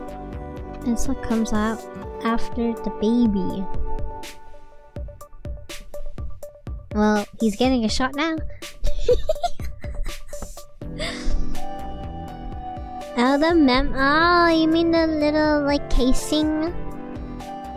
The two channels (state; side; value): identical; both; correlation 1.00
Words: It's what comes out after the baby. Well, he's getting a shot now. Oh, you mean the little, like, casing?